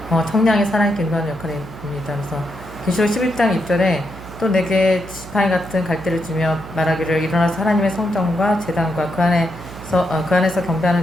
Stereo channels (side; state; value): right; noise; hum, 15 dB below the sound